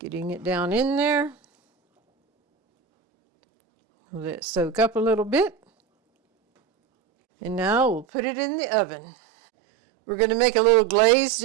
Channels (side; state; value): left; drops out; at 8.1 s